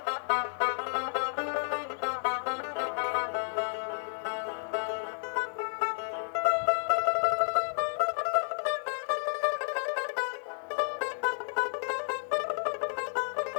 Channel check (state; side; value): silent; right; digital silence